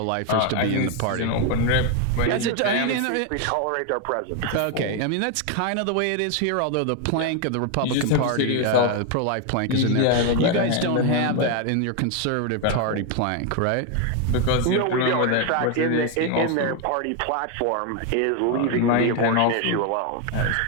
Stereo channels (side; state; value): both; different; correlation 0.01